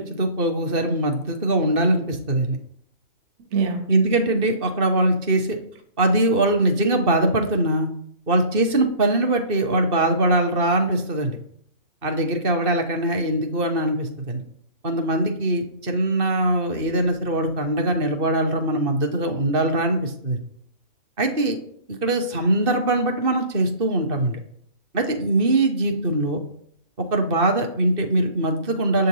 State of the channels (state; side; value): late; left; 2.6 ms